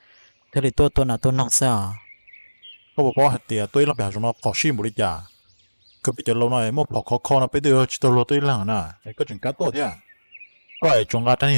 thế thì tôi nào tôi nong sao có một hạt tiền tôi là bèo rồi nó khó xin một đi chả cứ bị chờ lâu này một bỏ khó nó bây giờ chỉ tôi lo tôi là nè có chuyện cá tốt thế à có ai trồng cá thanh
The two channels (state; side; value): inverted; both; correlation -1.00